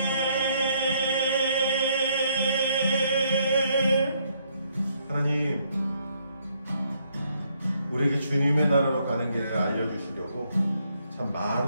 하나님, 우리에게 주님의 나라로 가는 길을 알려주시려고 참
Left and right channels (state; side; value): inverted; both; correlation -0.71